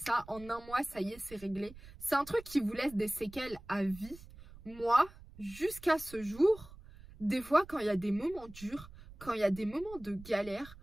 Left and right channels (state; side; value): noise; right; rumble, 18 dB below the sound